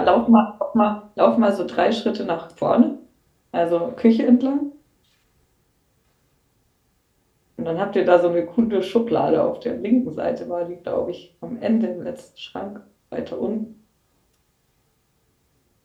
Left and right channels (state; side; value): identical; both; correlation 1.00